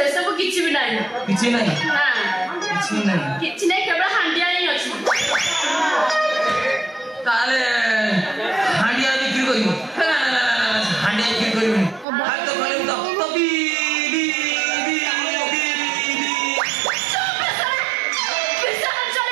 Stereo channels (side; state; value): left; drops out; at 12.1 s